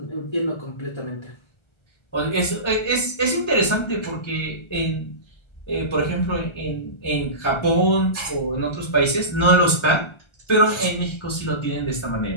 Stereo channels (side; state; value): right; late; 1.3 ms